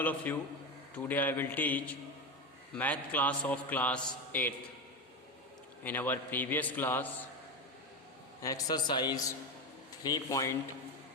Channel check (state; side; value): normal; both; correlation 0.17